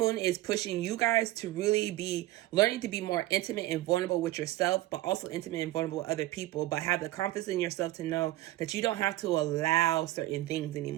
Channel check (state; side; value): quieter; left; 16.6 dB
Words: is pushing you guys to really be learning to be more intimate and vulnerable with yourself, but also intimate and vulnerable with other people, but have the confidence in yourself to know that you don't have to allow certain things